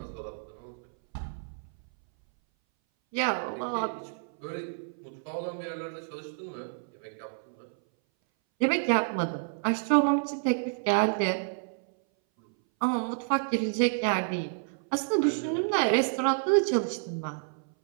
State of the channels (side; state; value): left; silent; 58 dB below the other